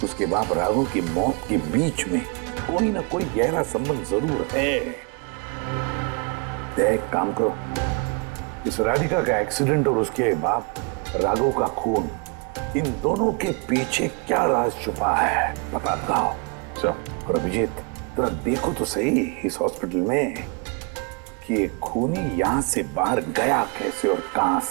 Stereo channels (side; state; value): left; quieter; 32.0 dB